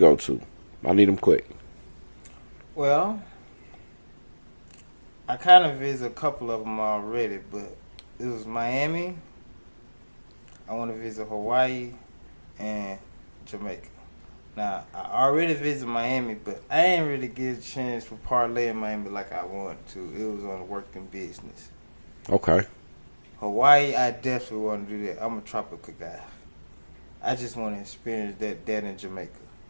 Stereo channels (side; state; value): both; inverted; correlation -1.00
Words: to? I need them quick. Well, I kind of visited a couple of them already, but it was Miami. I want to visit Hawaii and Jamaica. Now, I already visited Miami, but I ain't really get a chance to parlay in Miami like I wanted to. It was on working business. Okay. Hawaii, I definitely want to do that. I'm a tropical guy. I just want to experience that in Jamaica.